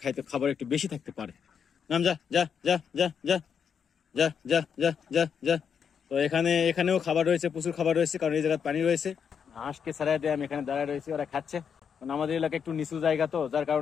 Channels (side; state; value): right; quieter; 7.1 dB